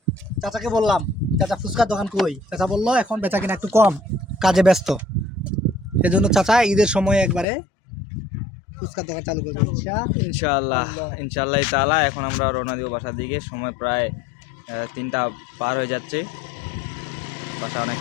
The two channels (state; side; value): drops out; right; at 7.5 s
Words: চাচাকে বললাম, চাচা ফুচকার দোকান কই? চাচা বললো এখন বেচা কিনা একটু কম, কাজে ব্যস্ত। সেজন্য চাচা ঈদের সময় একবারে ফুচকার দোকান চালু করবে। ইনশাআল্লাহ, ইনশাআল্লাহ তাআলা। এখন আমরা রওনা দিব বাসার দিকে। সময় প্রায় 3টা পার হয়ে যাচ্ছে। বাসায় অনেক